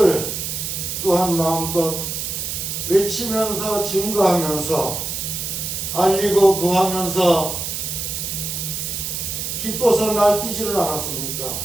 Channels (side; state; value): right; noise; hiss, 4 dB below the sound